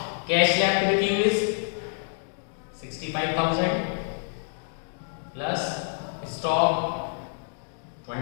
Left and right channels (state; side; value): silent; right; digital silence